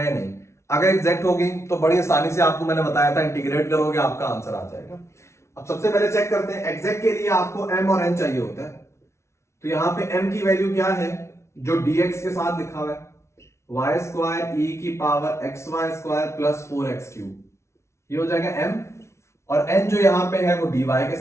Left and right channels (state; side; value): late; right; 0.13 ms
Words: नहीं। अगर एग्जैक्ट होगी तो बड़ी आसानी से आपको मैंने बताया था, इंटीग्रेट करोगे आपका आंसर आ जाएगा। अब सबसे पहले चेक करते हैं, एग्जैक्ट के लिए आपको m और n चाहिए होता है, तो यहाँ पे m की वैल्यू क्या है, जो dx के साथ लिखा हुआ है, y स्क्वायर e की power xy square plus 4x cube, ये हो जाएगा m। और n जो यहाँ पे है वो dy के